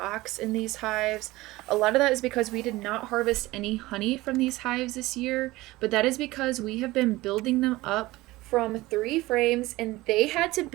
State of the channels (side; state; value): left; quieter; 19.2 dB